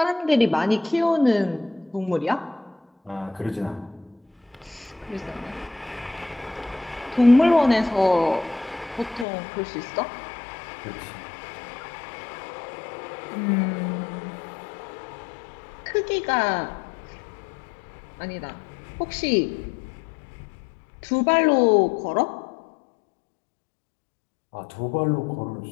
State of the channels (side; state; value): right; drops out; at 9.2 s